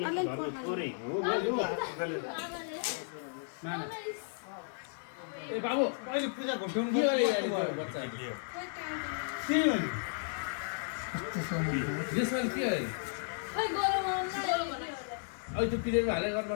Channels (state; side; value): silent; right; 55 dB below the other